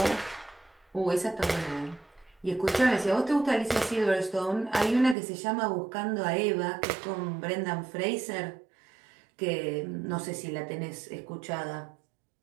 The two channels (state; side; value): drops out; left; at 5.2 s